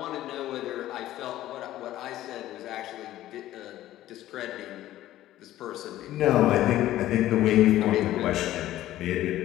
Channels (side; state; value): right; quieter; 14.2 dB